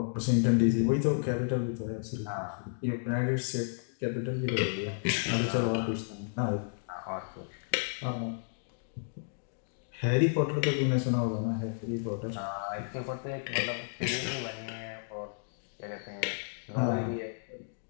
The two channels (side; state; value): right; silent; digital silence